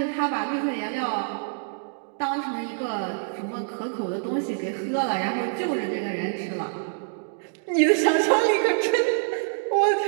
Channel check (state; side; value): silent; left; digital silence